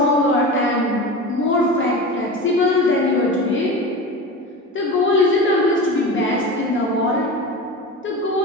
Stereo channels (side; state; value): both; normal; correlation 0.29